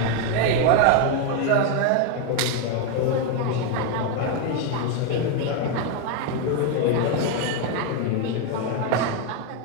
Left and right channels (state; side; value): different; both; correlation 0.01